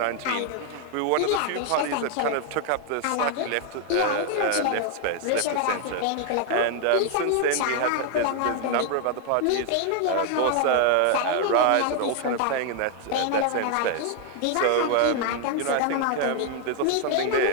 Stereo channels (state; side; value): different; both; correlation 0.00